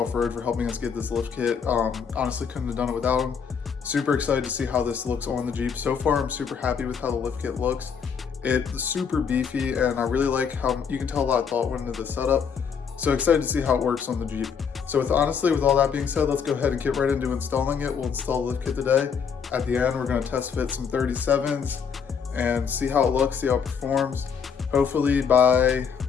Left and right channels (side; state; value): right; quieter; 6.6 dB